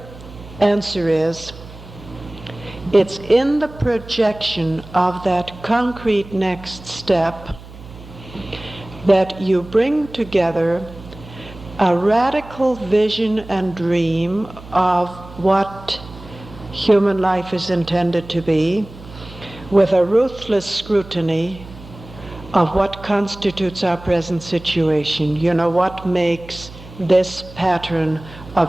answer is, it's in the projection of that concrete next step that you bring together a radical vision and dream of what human life is intended to be, with a ruthless scrutiny of what constitutes our present situation. You know, what makes this pattern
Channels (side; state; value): right; noise; hum, 17 dB below the sound